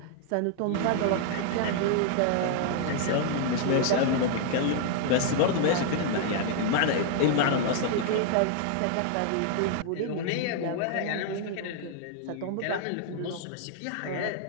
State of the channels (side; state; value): both; different; correlation -0.01